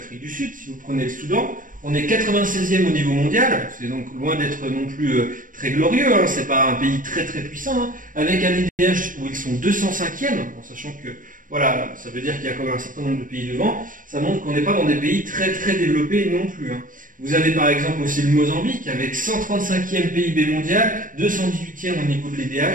du Sud, si vous prenez le Soudan, on est 96e au niveau mondial, c'est donc loin d'être non plus très glorieux, c'est pas un pays très très puissant, avec un IDH où ils sont 205e, en sachant que voilà, ça veut dire qu'il y a quand même un certain nombre de pays devant, ça montre qu'on n'est pas dans des pays très très développés non plus. Vous avez par exemple aussi le Mozambique avec 135e PIB mondial, 218e au niveau de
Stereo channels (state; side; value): late; left; 0.39 ms